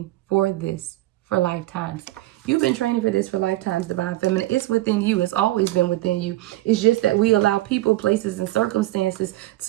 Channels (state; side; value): quieter; left; 17.2 dB